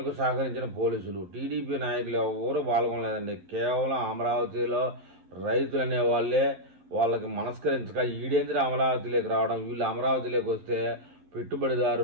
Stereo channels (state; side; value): late; left; 12 ms